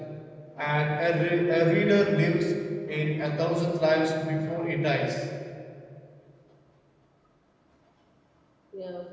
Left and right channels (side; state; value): both; identical; correlation 1.00